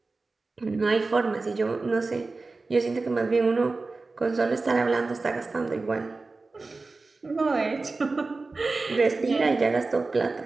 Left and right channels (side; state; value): left; quieter; 3.7 dB